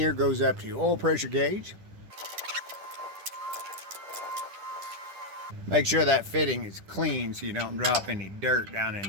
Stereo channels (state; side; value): late; left; 10 ms